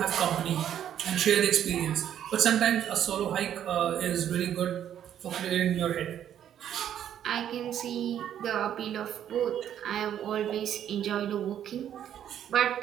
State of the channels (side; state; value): left; quieter; 10.1 dB